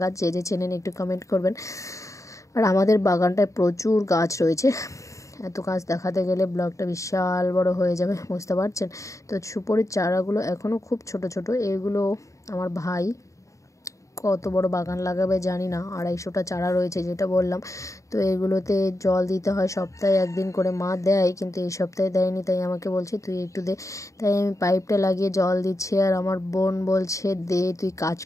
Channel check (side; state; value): right; late; 0.15 ms